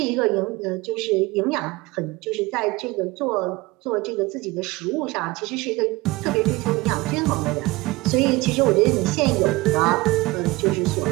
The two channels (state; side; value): quieter; left; 21.6 dB